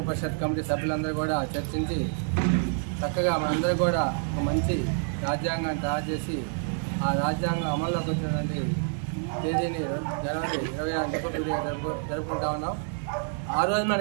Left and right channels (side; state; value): left; silent; 58 dB below the other